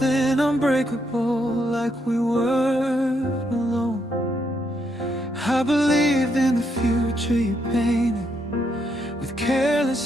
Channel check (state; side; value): normal; both; correlation 0.77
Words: unbreakable, like we weren't alone. I believed in the future you painted with